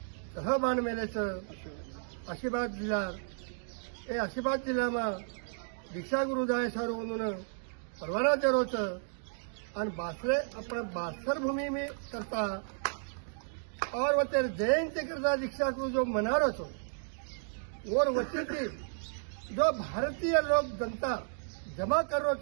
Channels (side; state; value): left; silent; digital silence